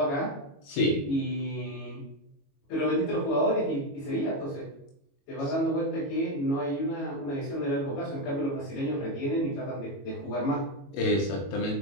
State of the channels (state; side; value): late; right; 22 ms